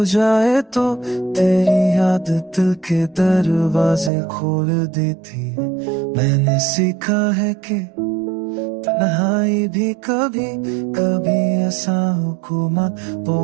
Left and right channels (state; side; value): drops out; left; at 4.1 s